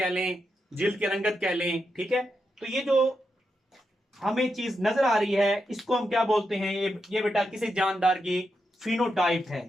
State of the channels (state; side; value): normal; both; correlation 0.85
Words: लें, जिल्द की रंगत कह लें। ठीक है, तो ये जो हमें चीज नजर आ रही है इसको हम क्या बोलते हैं? ये बेटा किसी जानदार की फिनोटाइप